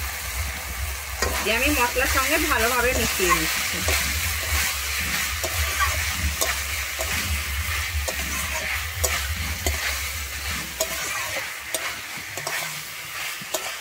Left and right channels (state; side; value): identical; both; correlation 1.00